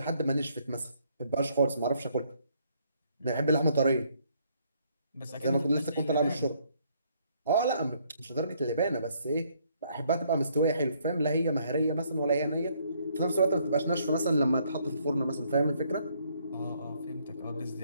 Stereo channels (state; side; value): inverted; both; correlation -0.68